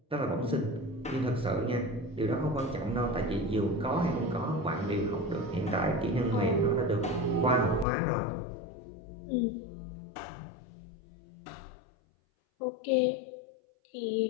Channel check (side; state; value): right; drops out; at 7.9 s